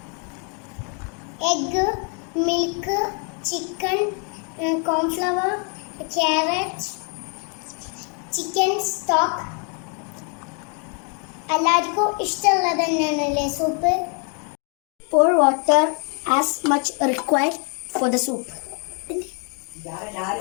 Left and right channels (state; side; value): quieter; right; 38.5 dB